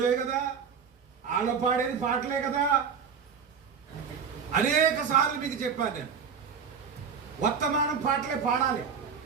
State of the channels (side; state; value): left; quieter; 6.5 dB